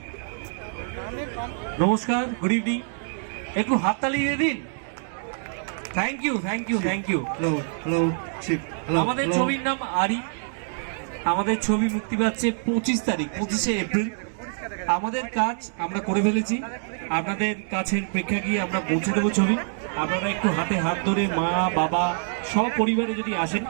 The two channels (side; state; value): left; silent; digital silence